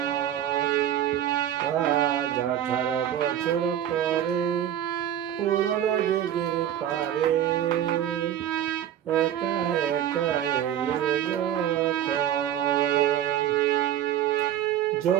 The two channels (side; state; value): left; quieter; 10.8 dB